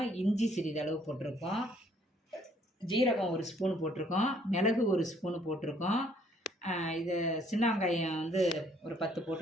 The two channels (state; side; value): normal; both; correlation 0.64